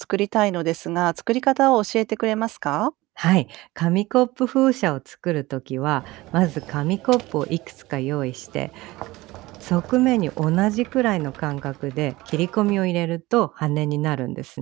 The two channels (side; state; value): left; quieter; 19.5 dB